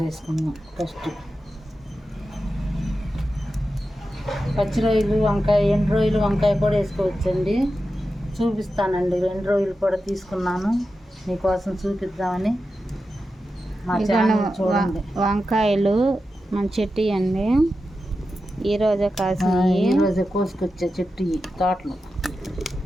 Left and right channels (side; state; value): both; normal; correlation 0.91